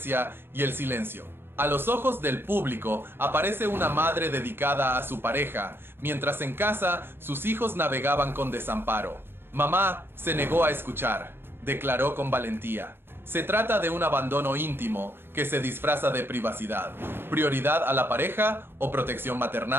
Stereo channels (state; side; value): late; left; 0.10 ms